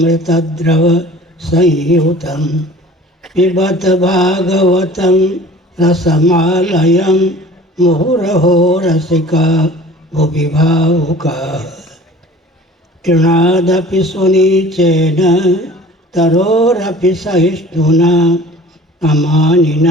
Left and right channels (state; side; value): normal; both; correlation 0.46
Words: संयुतं पिबत भागवतं रसमालयं मुहुरहो रसिका भुवि भावुकाः। तृणादपि सुनीचेन तरोरपि सहिष्णुना